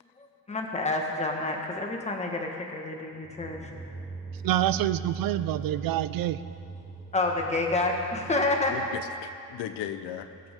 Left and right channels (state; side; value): normal; both; correlation 0.07